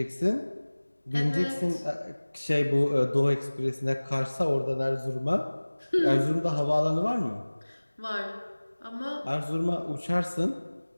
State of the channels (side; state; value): both; inverted; correlation -1.00